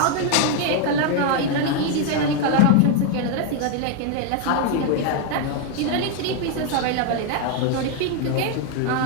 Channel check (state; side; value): different; both; correlation 0.00